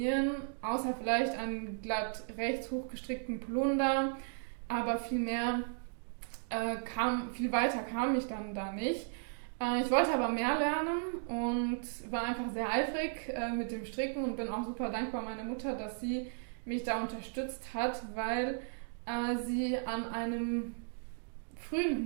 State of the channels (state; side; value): silent; left; digital silence